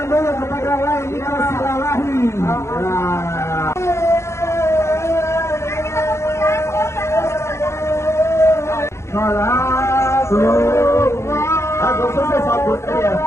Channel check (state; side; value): late; right; 0.13 ms